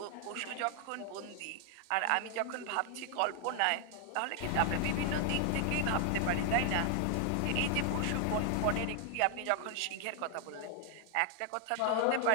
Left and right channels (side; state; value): both; different; correlation 0.00